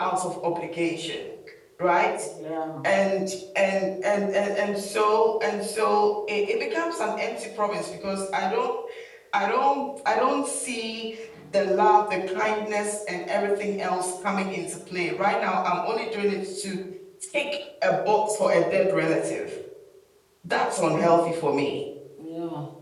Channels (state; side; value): identical; both; correlation 1.00